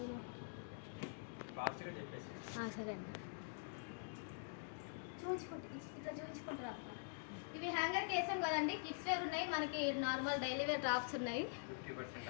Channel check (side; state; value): right; silent; digital silence